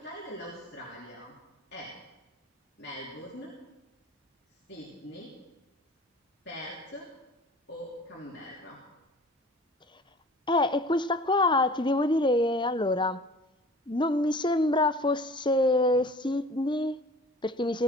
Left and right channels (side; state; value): both; normal; correlation 0.45